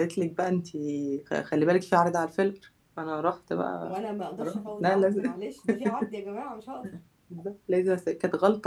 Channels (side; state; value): both; identical; correlation 1.00